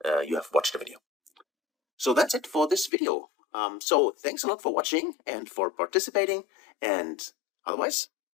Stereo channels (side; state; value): right; drops out; at 2.9 s